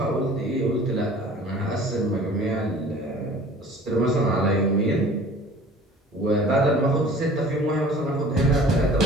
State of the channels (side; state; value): both; normal; correlation 0.47